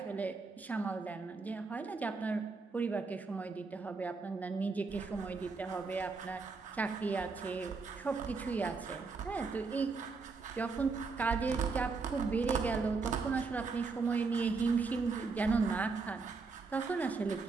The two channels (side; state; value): left; quieter; 4.4 dB